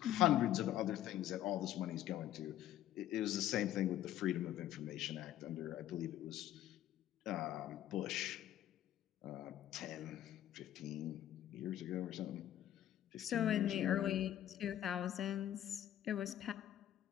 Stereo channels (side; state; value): right; quieter; 12.2 dB